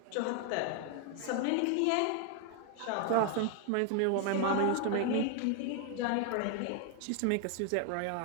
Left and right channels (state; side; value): different; both; correlation 0.01